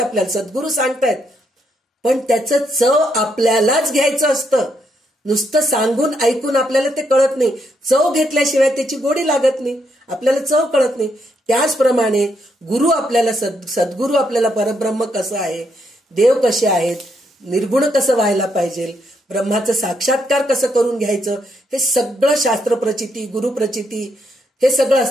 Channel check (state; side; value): normal; both; correlation 0.77